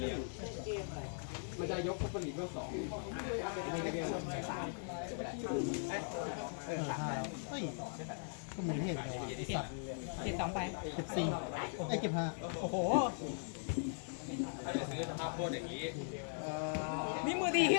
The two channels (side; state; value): right; silent; digital silence